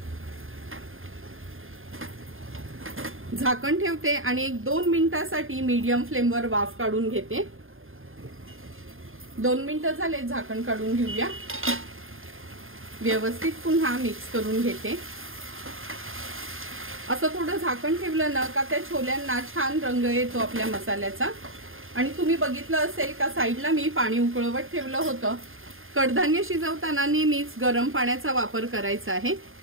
झाकण ठेवते आणि एक 2 मिनिटासाठी मीडियम फ्लेमवर वाफ काढून घेते। 2 मिनिटं झाले, झाकण काढून घेऊया। व्यवस्थित पुन्हा मिक्स करून घेते। असं थोडं झाकण ठेवलं ना का त्या छोल्यांना छान रंग येतो आपल्या मसाल्याचा। आणि तुम्ही बघितलं असेल का साईडला मी पाणी उकळवत ठेवलं होतं। कडधान्य शिजवताना नेहमीच गरम पाण्याचा वापर करायचा आहे।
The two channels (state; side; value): late; left; 0.59 ms